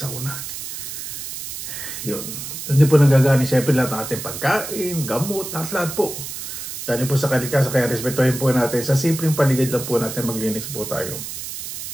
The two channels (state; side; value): noise; right; hiss, 8 dB below the sound